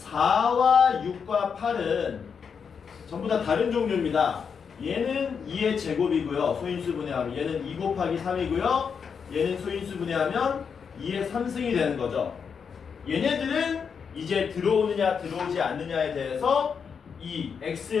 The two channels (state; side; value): quieter; right; 6.4 dB